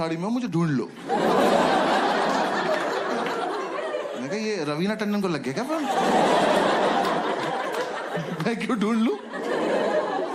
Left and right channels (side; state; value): both; identical; correlation 1.00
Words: में हूं, मुझे ढूंढ लो। मैंने कहा ये रवीना टंडन को लग गया क्या फोन? मैं क्यों ढूंढ लूं?